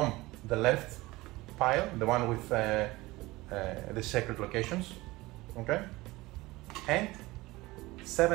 the left pile, the one with the sacred locations, okay, and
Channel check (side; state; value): left; quieter; 20.3 dB